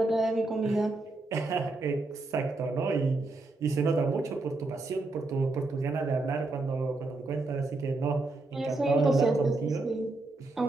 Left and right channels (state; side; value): quieter; left; 3.2 dB